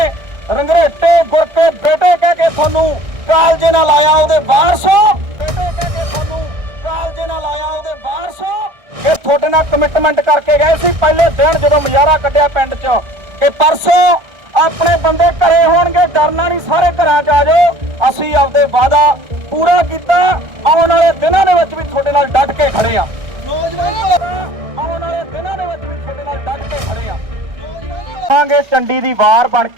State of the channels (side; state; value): left; late; 1.6 ms